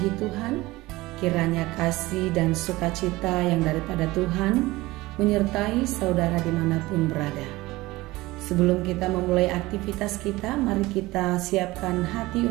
Tuhan. Kiranya kasih dan sukacita yang daripada Tuhan menyertai saudara dimanapun berada. Sebelum kita memulai aktivitas kita, mari kita siapkan hati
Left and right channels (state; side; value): quieter; left; 19.7 dB